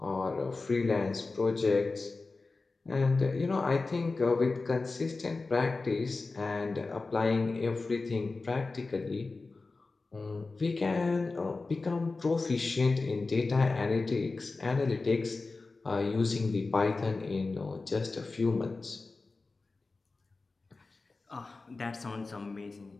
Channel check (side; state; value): right; quieter; 3.7 dB